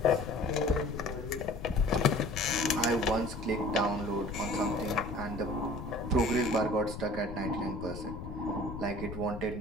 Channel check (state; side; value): noise; left; rumble, 9 dB below the sound